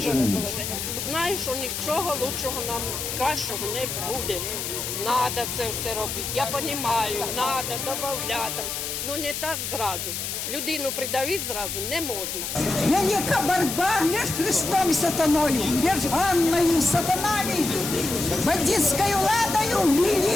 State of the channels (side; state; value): left; noise; hiss, 4 dB below the sound